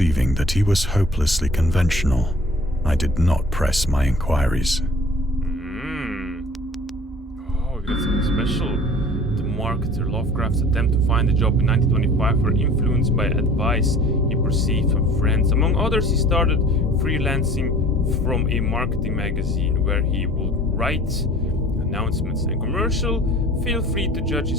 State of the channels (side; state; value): both; normal; correlation 0.47